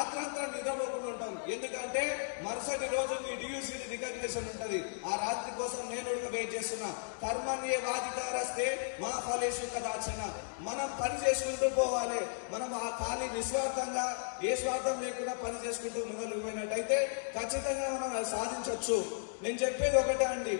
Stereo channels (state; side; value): silent; right; digital silence